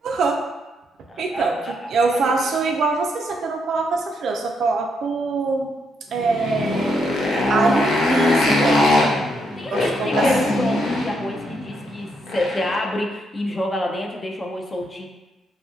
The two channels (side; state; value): both; normal; correlation 0.77